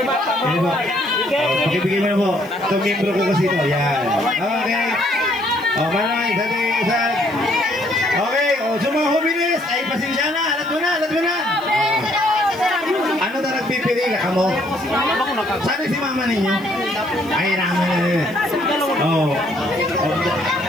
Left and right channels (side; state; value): left; noise; hiss, 26 dB below the sound